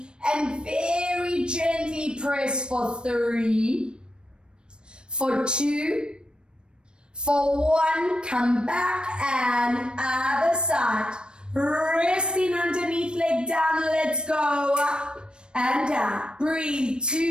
And very gently press for 3, for 2, for 1, come back and other side. Resting underneath, leg down, let's go up and down. Breathe,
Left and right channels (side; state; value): left; late; 0.053 ms